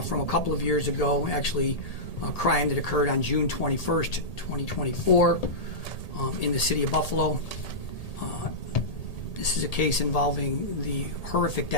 from a couple of years ago, actually a crime that occurred on June 21st, 2024 in the city of Buffalo. This is a case involving the horrific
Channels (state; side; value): late; right; 1.8 ms